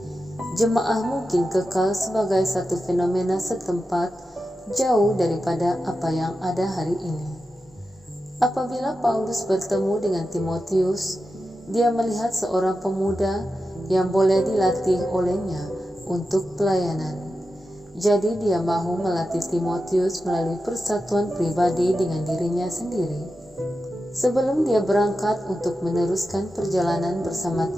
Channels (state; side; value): normal; both; correlation 0.91